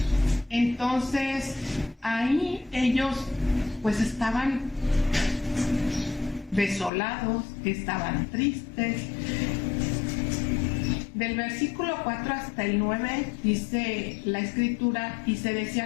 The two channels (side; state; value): right; drops out; at 6.9 s